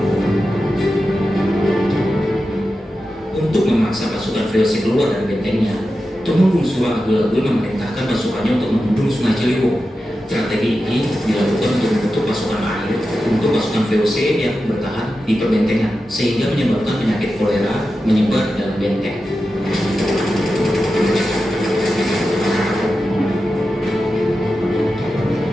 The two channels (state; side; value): normal; both; correlation 0.91